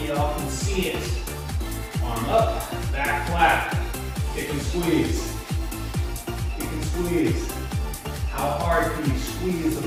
y'all can see it. Arm up, back flat. Kick and squeeze. Kick and squeeze. How hard can you squeeze the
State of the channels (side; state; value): both; identical; correlation 1.00